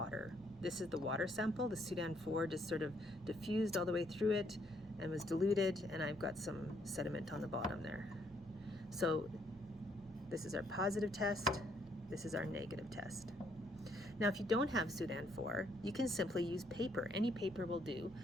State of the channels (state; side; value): normal; both; correlation 0.70